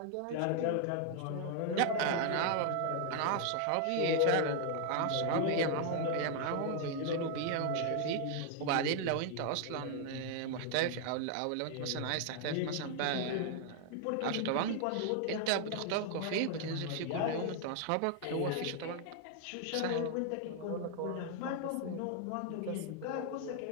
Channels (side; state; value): both; different; correlation 0.00